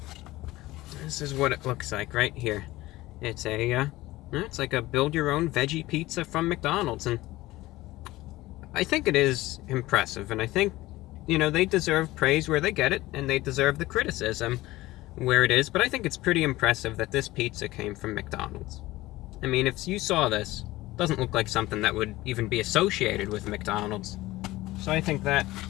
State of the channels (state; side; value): quieter; right; 18.1 dB